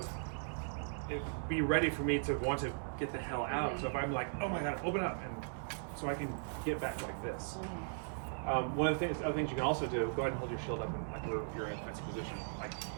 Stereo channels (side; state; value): left; silent; digital silence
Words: be ready for me to want to get the hell out. So if I'm like, oh my god, open up, and so I can get back like this. One of the other things you can also do, go ahead and hold your shield up and like you're in a defensive position, like